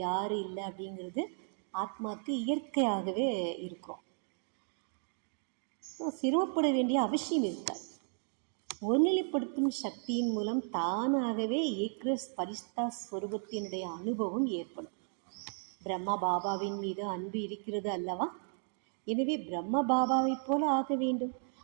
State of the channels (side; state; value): left; silent; 55 dB below the other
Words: இல்லை அப்படிங்கிறது ஆத்மாவுக்கு இயற்கையாகவே இருக்கும். சிரமப்பட வேண்டிய அவசியம் இருக்காது. ஒருநிலைப்படுத்தும் சக்தியின் மூலம் தானாகவே ஏக்ரஸ் பரிஸ்தா ஸ்வரூபத்தினுடைய அனுபவம் ஏற்படும். பிரம்மா பாபாவின் மீது அன்பு இருக்கிறது அல்லவா? எனவே பிரம்ம பாபாவை போல ஆக வேண்டும்,